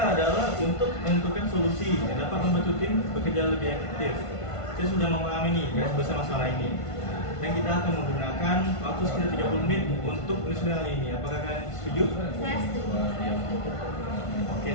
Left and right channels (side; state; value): right; late; 1.5 ms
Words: adalah untuk menentukan solusi yang dapat membantu tim bekerja lebih efektif. Saya sudah memahami nih garis besar masalah ini. Dan kita akan menggunakan waktu sekitar 30 menit untuk menyusun hal ini. Apakah kalian setuju? Saya setuju. Oke,